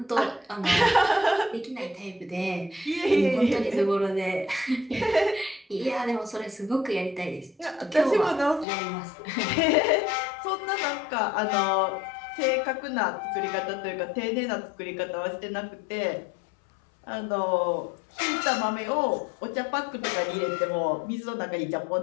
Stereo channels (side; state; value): right; drops out; at 8.7 s